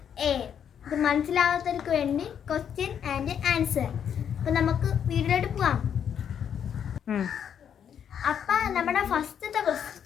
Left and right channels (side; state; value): right; quieter; 8.5 dB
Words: ഇത് മനസ്സിലാവാത്തവർക്ക് വേണ്ടി ക്വസ്റ്റ്യൻ ആൻഡ് ആൻസർ. അപ്പോൾ നമുക്ക് വീഡിയോയിലോട്ട് പോവാം. അപ്പം നമ്മുടെ ഫസ്റ്റത്തെ